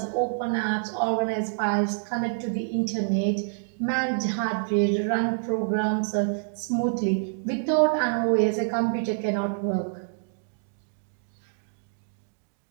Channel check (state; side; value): silent; left; digital silence